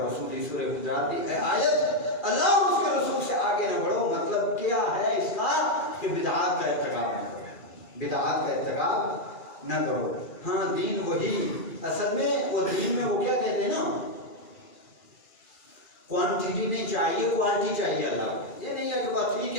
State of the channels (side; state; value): right; late; 2.4 ms